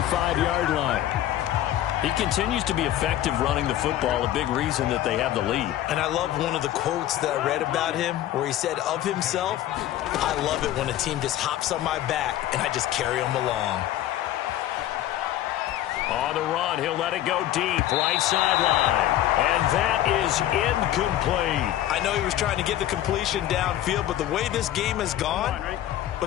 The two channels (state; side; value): quieter; right; 12.9 dB